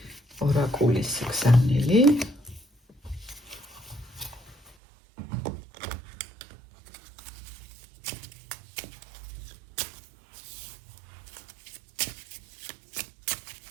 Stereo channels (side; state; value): left; drops out; at 4.8 s